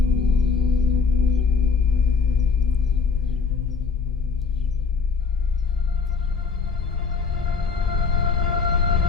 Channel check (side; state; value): right; quieter; 5.3 dB